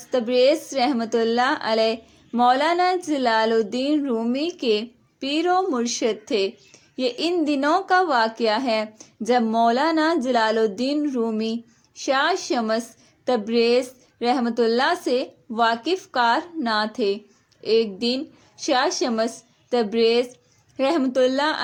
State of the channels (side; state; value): both; identical; correlation 1.00